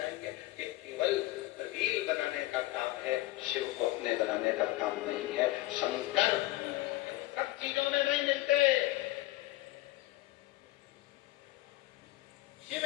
ये केवल रील बनाने का काम है, शिव को अपने बनाने का काम नहीं है। शंकर सब चीजों में नहीं मिलते, शिव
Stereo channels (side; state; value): right; quieter; 17.9 dB